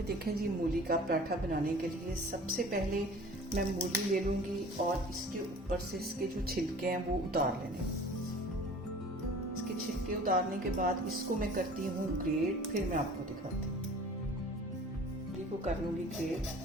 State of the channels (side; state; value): both; normal; correlation 0.45